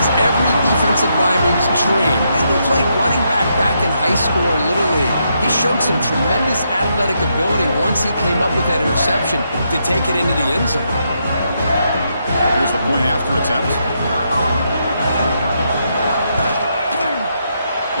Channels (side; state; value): both; inverted; correlation -0.79